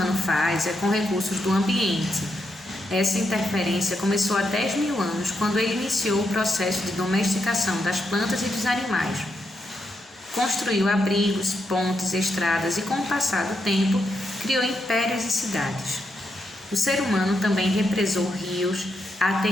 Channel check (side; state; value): both; normal; correlation 0.82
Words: faz é com recursos do ambiente. Essa interferência começou há 10 mil anos, quando ele iniciou o processo de domesticação das plantas e dos animais. Construiu abrigos, pontes, estradas e, com o passar do tempo, criou impérios e cidades. O ser humano também represou rios,